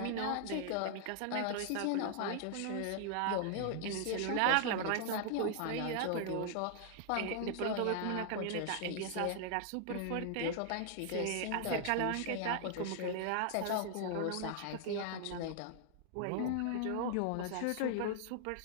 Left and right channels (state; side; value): different; both; correlation 0.00